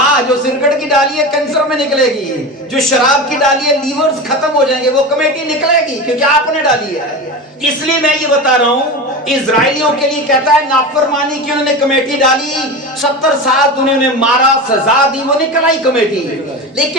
जो सिगरेट की डाली है कैंसर में निकलेगी, जो शराब की डाली है लीवर्स खत्म हो जाएंगे, वो कमेटी निकलेगी क्योंकि आपने डाली है। इसलिए मैं ये बता रहा हूं, इजराइलियों के लिए कहता है नाफरमानी की उन्होंने कमेटी डाली, 70 साल उन्होंने मारा, सजा दी, वो निकल आई कमेटी।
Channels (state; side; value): normal; both; correlation 0.25